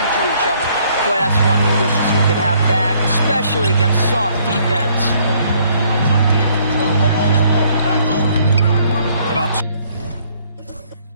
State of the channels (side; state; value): both; inverted; correlation -0.65